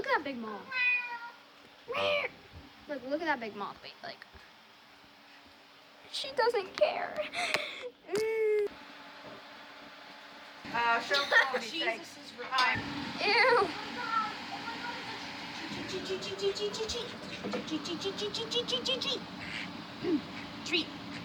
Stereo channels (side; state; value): both; identical; correlation 1.00